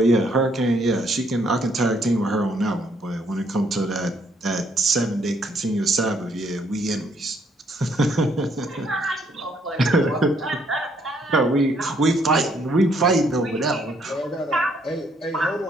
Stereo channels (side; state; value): both; normal; correlation 0.69